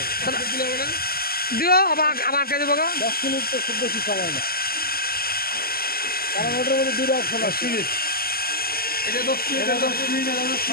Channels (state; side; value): late; right; 0.44 ms